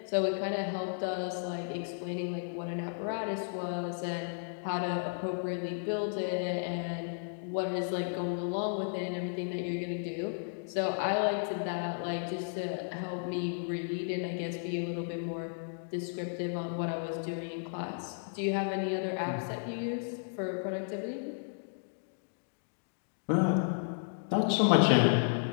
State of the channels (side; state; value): right; silent; digital silence